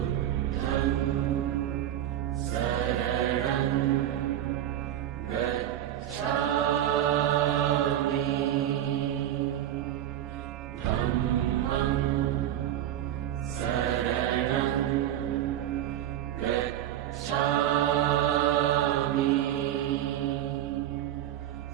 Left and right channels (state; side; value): quieter; left; 11.9 dB